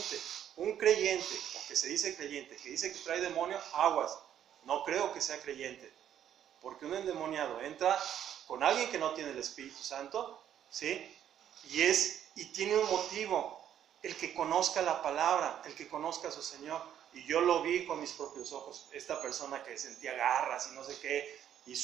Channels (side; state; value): left; quieter; 10.1 dB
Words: Un creyente, o que se dice creyente, que dice que trae demonio, aguas. No creo que sea creyente, porque un endemoniado entra con alguien que no tiene el Espíritu Santo, ¿sí? Y tiene un motivo. El que conozca la palabra, el que conozca a su Señor. Y yo lo vi con mis propios ojos. Esta persona que sentía garras y no sé qué, y